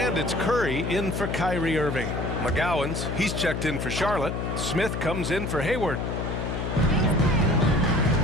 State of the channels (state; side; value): noise; left; hum, 3 dB below the sound